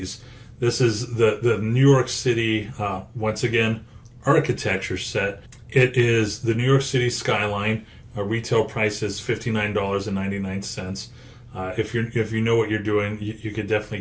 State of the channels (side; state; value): both; identical; correlation 1.00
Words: This is the New York City, once again, architecture set. It is the New York City skyline. Retail price is $59.99. If you know what you're doing, you could definitely